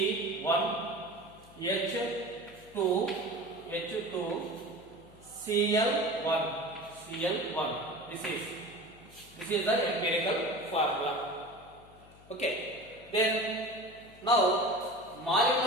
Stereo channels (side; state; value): left; noise; hum, 23 dB below the sound